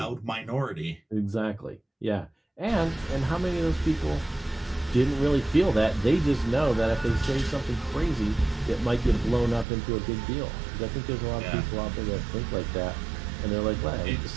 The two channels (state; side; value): drops out; left; at 9.7 s